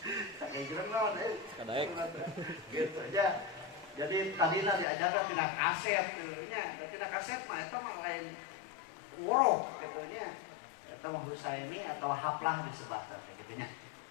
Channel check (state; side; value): drops out; right; at 4.9 s